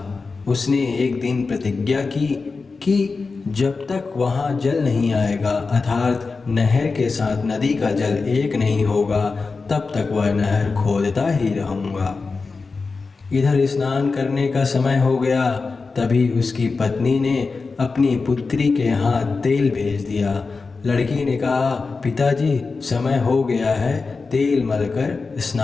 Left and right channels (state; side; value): quieter; right; 4.3 dB